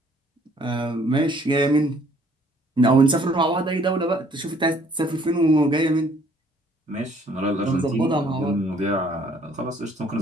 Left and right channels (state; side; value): normal; both; correlation 0.61